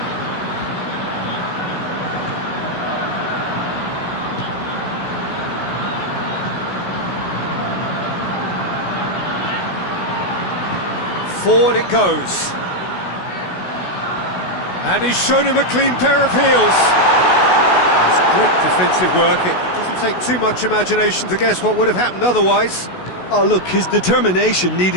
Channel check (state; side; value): late; right; 16 ms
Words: Forward it goes. And he's shown him a clean pair of heels. That's great defensive work. It doesn't take too much imagination to guess what would have happened otherwise. Oh, look, his determination